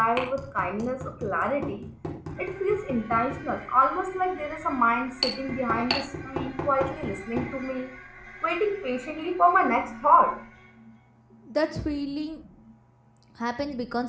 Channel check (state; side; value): identical; both; correlation 1.00